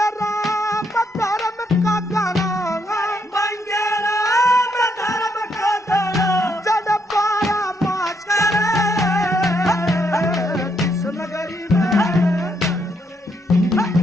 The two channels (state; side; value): normal; both; correlation 0.76